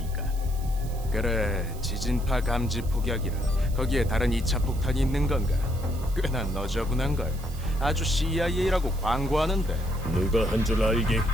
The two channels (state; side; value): noise; right; hiss, 19 dB below the sound